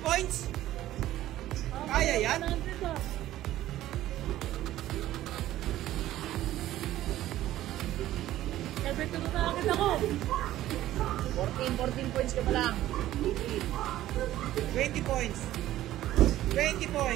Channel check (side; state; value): left; quieter; 14.1 dB